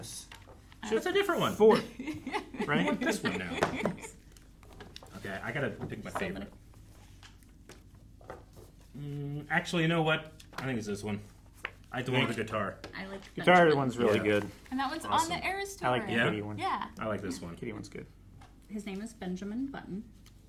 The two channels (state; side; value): identical; both; correlation 1.00